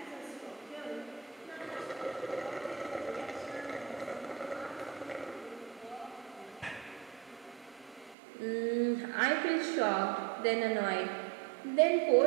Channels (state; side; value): drops out; left; at 8.2 s